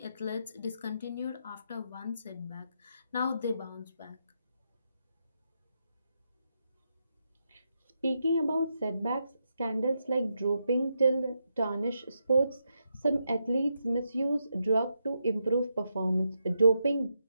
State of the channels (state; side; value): inverted; both; correlation -0.83